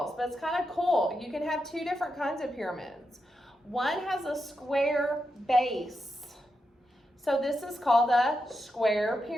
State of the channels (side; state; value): both; normal; correlation 0.86